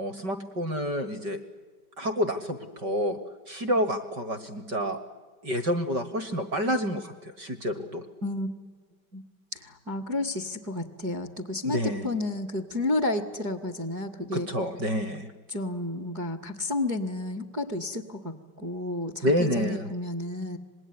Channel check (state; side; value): late; left; 5.2 ms